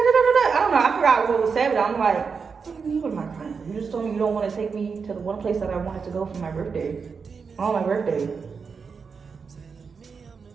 I don't know, I forgot what was said, but I'm like, what do you mean, what am I crying for? You just told me you don't want to take me to the one place that I wanted to go for my birthday. On my birthday.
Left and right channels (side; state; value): left; quieter; 5.5 dB